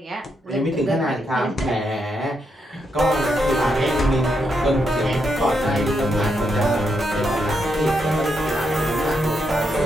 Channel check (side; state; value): both; normal; correlation 0.81